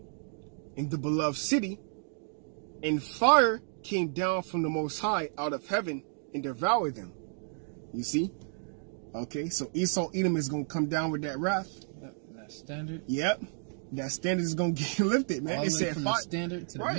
in the beloved city, and fire came down from the Most High out of heaven and devoured them. You see? Okay, so Esau, Edom is going to come down with that wrath. Yep, that standard. Yep. That standard is going to get lifted, man. All It the way said from fire. the standard to the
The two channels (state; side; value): silent; left; digital silence